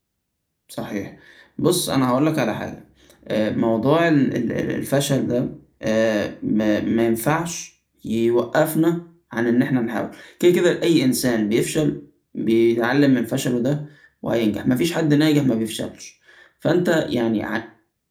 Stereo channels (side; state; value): both; identical; correlation 1.00